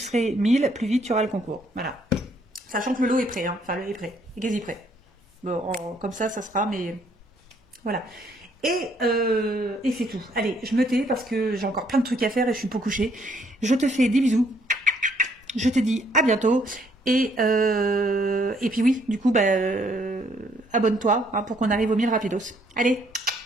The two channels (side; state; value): both; normal; correlation 0.67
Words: 1000, plus vite tu auras le concours. Voilà. Sachant que le lot est prêt, hein. Enfin le lot est prêt, est quasi prêt. Bon, comme ça sera, mais voilà. Et c'est tout. Allez, je me tais parce que j'ai encore plein de trucs à faire et je suis pas couchée. Je te fais des bisous. Je te dis à bientôt. Et puis oui, du coup, bah, abonne-toi hein, pour qu'on arrive aux 1000 rapidos. Allez,